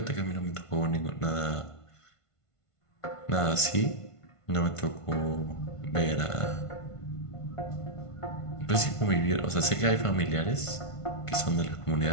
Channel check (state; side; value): late; right; 1.5 ms